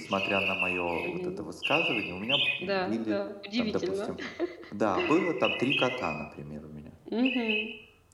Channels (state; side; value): identical; both; correlation 1.00